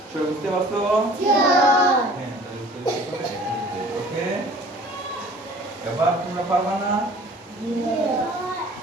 সবাই বুঝতে পারছো? হ্যাঁ, তাহলে উত্তর হবে 103। ওকে, এবার তোমরা পারবা না?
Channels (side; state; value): both; normal; correlation 0.48